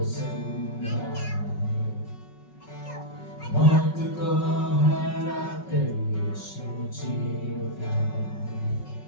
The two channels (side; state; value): right; late; 5.4 ms